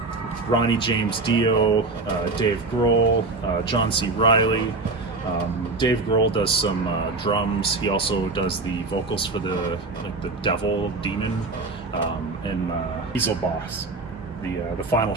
Ronnie James Dio, Dave Grohl, John C. Reilly. Dave Grohl does some drums. He also does the vocals for the devil demon in Diesel Boss. The final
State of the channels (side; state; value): left; quieter; 3.5 dB